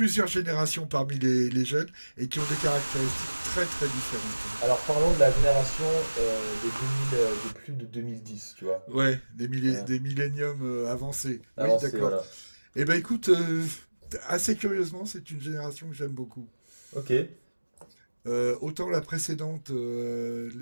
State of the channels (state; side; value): inverted; both; correlation -1.00